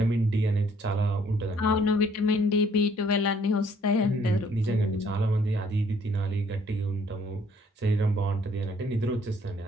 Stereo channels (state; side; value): normal; both; correlation 0.62